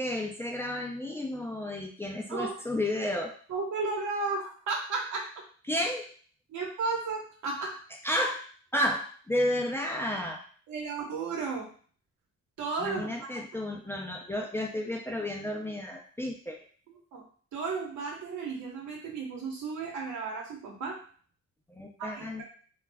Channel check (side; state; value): both; normal; correlation 0.37